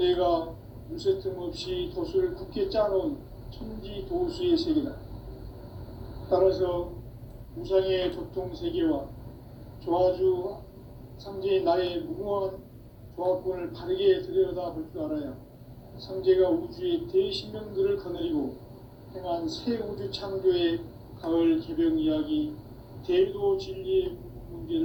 물새 틈 없이 도수를 굳게 짜놓은 천지 도수의 세계다. 따라서 우상의 도통 세계와 조화주 상제인 나의 무모한 조합권을 바르게 들여다볼 줄 알아야 상제가 우주의 대신명들을 거느리고 행한 새 우주 창조의 가을 개벽 이야기, 대도 진리의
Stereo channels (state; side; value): identical; both; correlation 1.00